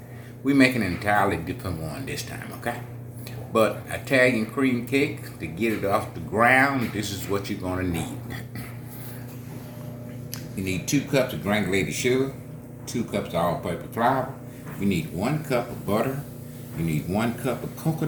We making an entirely different one this time, okay? But Italian cream cake, to get it off the ground, this is what you're gonna need. You need 2 cups of granulated sugar, 2 cups of all-purpose flour. You need 1 cup of butter. You need 1 cup of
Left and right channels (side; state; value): both; identical; correlation 1.00